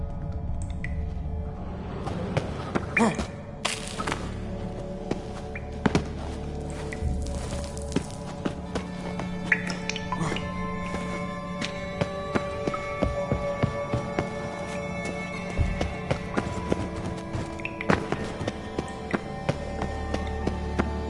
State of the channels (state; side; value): identical; both; correlation 1.00